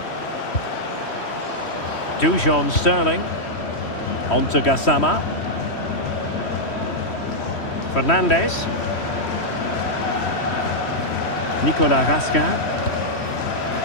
Dujon Sterling. On to Gassama. Fernandes. Nicolas Raskin.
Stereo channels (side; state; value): right; late; 3.1 ms